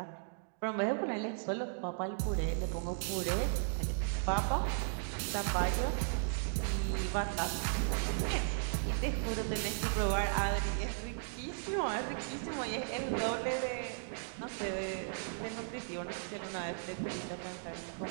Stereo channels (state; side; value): silent; left; digital silence